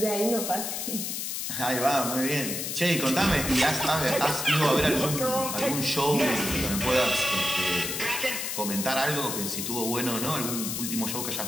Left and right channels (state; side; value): noise; left; hiss, 3 dB below the sound